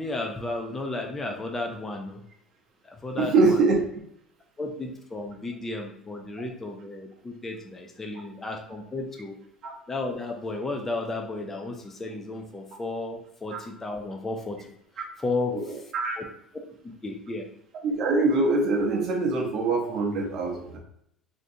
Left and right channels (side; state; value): both; normal; correlation 0.46